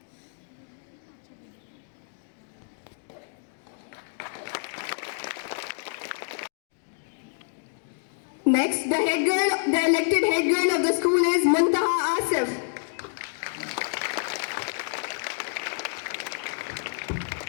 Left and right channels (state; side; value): silent; right; digital silence